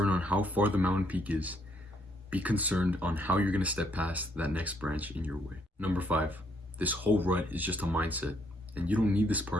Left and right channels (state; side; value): normal; both; correlation 0.70